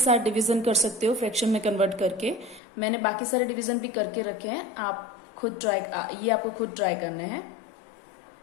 डिवीजन कर सकते हो फ्रैक्शन में कन्वर्ट करके। मैंने बाकी सारे डिवीजन भी करके रखे हैं, आप खुद ये आपको खुद ट्राई करने हैं।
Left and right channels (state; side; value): drops out; right; at 2.6 s